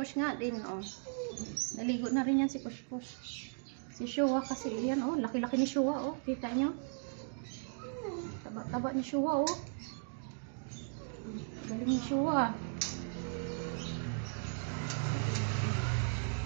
nga din naligo na rin yan si Kush. Si Shua kasi yan laki-laki ni Shua kita nyo. Taba ni Shua galing ni Shua.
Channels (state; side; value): silent; left; digital silence